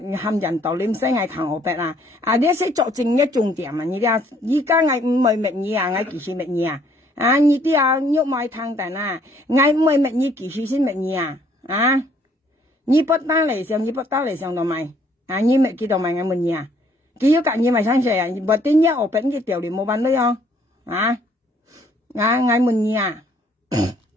含人道念聲係睇我白啊，你識作正一重點啊，你哋依家我唔係乜嘢啊，我其實乜嘢 à như tiêu nhúc mai thằng tàn à ngay mới mẹ như kỳ suy xin mẹ nhỉ à như bắt ta lại xong như bắt ta lại xong đâu mày à như mẹ kia đâu mày ngay mình nhỉ kia yếu cả như mày sang sẻ bật tin nhá ở bên cái tiểu điểm mua bán đấy không à à ngay mình nhỉ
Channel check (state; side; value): normal; both; correlation 0.63